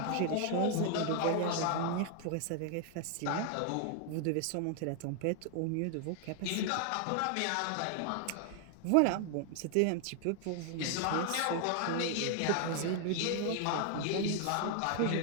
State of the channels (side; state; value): both; different; correlation 0.00